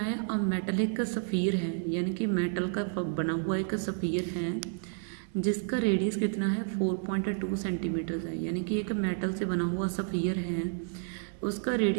अब मेटलिक सफ़ीर है, यानी कि मेटल का बना हुआ एक सफ़ीर है जिसका रेडियस कितना है 4.2 सेंटीमीटर है। यानी कि एक मेटल से बना हुआ सफ़ीर है, उसका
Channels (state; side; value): silent; left; 57 dB below the other